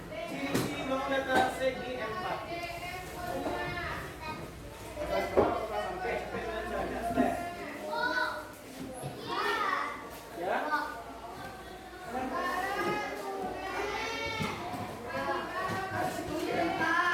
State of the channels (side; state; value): both; identical; correlation 1.00